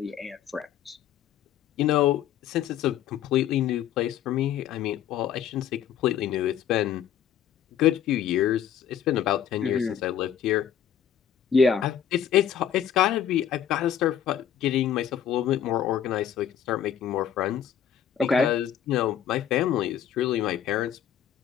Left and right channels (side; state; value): right; quieter; 9.5 dB